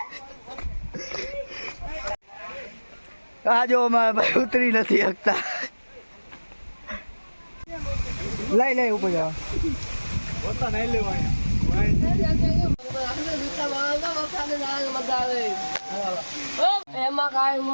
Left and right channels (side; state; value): both; inverted; correlation -1.00